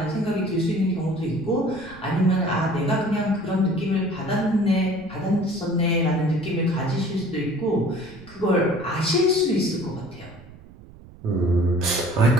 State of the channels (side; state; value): right; noise; rumble, 20 dB below the sound